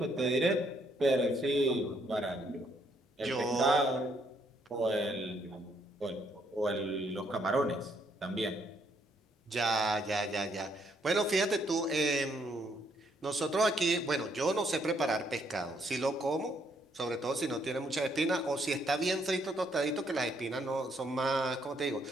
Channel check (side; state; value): both; normal; correlation 0.71